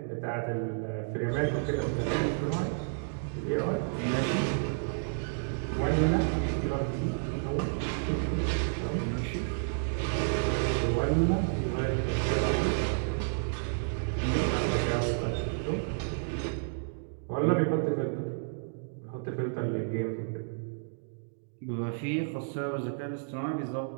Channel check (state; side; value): silent; left; digital silence